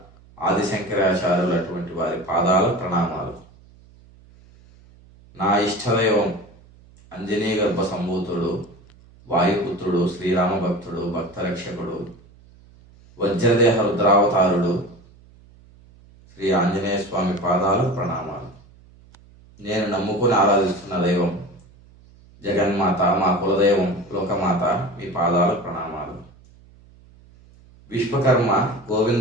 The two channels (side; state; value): right; noise; hum, 26 dB below the sound